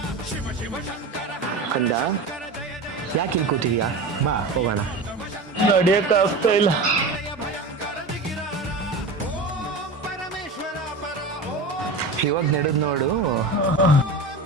ಕಂದ, ಯಾಕೆ ಇಲ್ಲಿ ಕೂತಿದ್ಯಾ? ಬಾ ಹೋಗೋಣ. ನಡಿಯಕ್ ಆಗ್ತಾ ಇಲ್ಲ. ಇವಾಗ ನಡೆದ್ ನೋಡು.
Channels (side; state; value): left; quieter; 3.3 dB